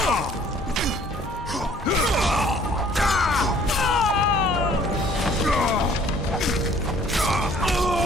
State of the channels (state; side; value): normal; both; correlation 0.56